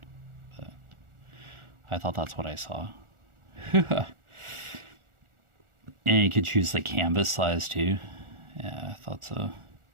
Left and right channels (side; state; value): left; late; 1.4 ms